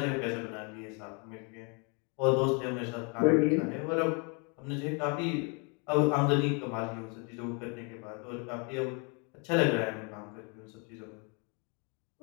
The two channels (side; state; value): right; quieter; 34.5 dB